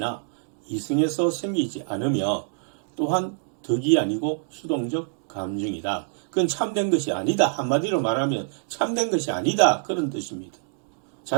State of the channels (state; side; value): silent; left; digital silence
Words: 이성에서 생기지 않으며 또한 덕이 아니고 수동적 감정이다. 그건 참된 것이 아니다. 한마디로 말하면 참된 것이 아니다. 그런 뜻입니다.